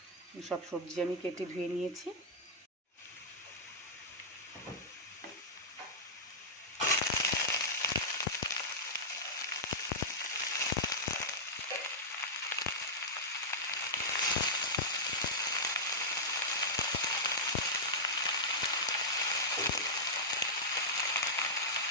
সব সবজি আমি কেটে ধুয়ে নিয়েছি।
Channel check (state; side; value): normal; both; correlation -0.09